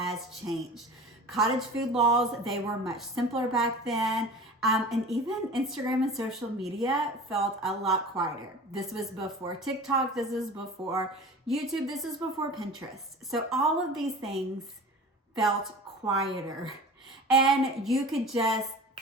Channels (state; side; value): normal; both; correlation 0.38